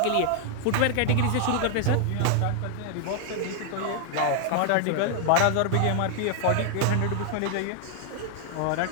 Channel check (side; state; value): both; different; correlation 0.00